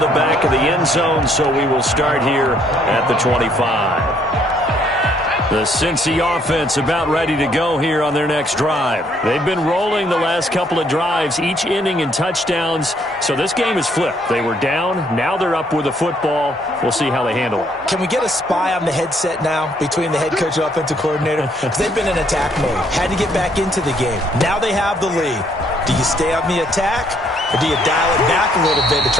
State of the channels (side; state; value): both; normal; correlation 0.67